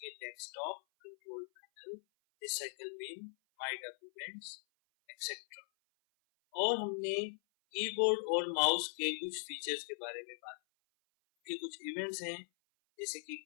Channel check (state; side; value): silent; right; 51 dB below the other